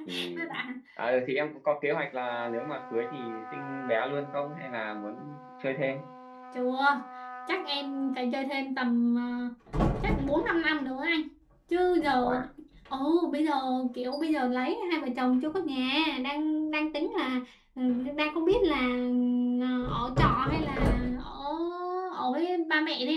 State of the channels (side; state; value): both; identical; correlation 1.00